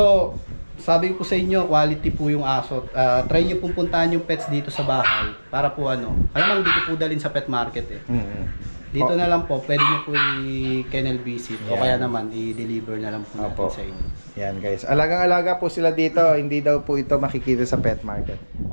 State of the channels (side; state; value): both; inverted; correlation -1.00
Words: sabi ko sa inyo, quality po yung aso. Try nyo pong puntahan yung pets dito sa bahay para po ano. Alam mo, dito po dalhin sa pet market eh. Dito na lang po, pwede nyo po i-kennel visit o Yan. kaya naman i-deliver na lang po natin Opo. sa inyo. Yan guys. Alagang-alaga po sila dito. Hindi daw po ito makikita sa pet market.